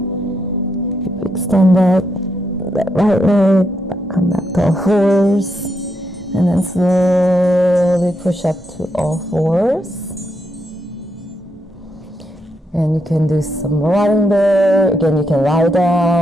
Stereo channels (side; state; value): both; normal; correlation 0.80